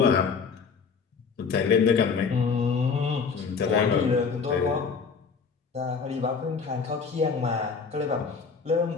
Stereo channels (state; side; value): quieter; right; 5.4 dB